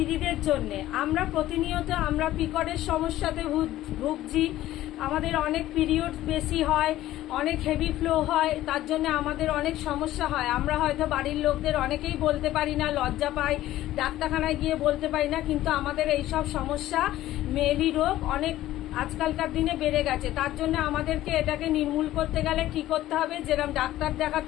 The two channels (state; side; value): quieter; right; 14.7 dB